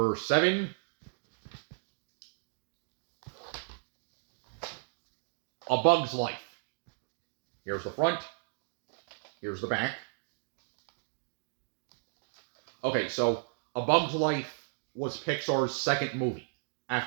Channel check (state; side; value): silent; left; digital silence